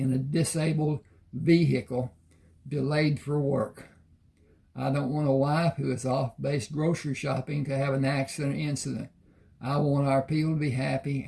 a disabled vehicle delayed for work. I don't want a wife who is off-base grocery shopping to have an accident or incident. I want our people to be happy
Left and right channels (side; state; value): both; identical; correlation 1.00